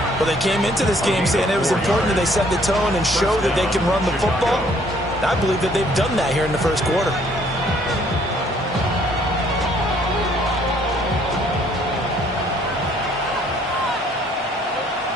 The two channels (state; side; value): normal; both; correlation 0.62